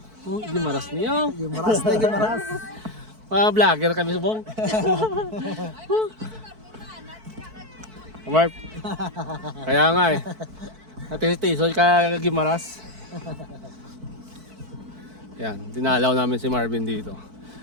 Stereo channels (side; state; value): left; late; 4.5 ms